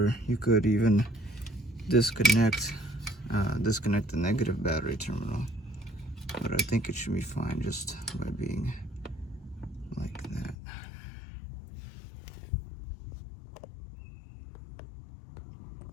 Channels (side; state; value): right; drops out; at 10.6 s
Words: you could even disconnect the negative battery terminal, but I think it should be fine just by being like that.